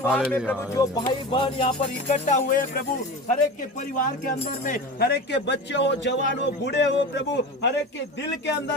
में प्रभु जो भाई बहन यहाँ पर इकट्ठा हुए हैं प्रभु, हर एक के परिवार के अंदर में, हर एक के बच्चे हो, जवान हो, बूढ़े हो प्रभु, हर एक के दिल के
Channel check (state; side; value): normal; both; correlation 0.30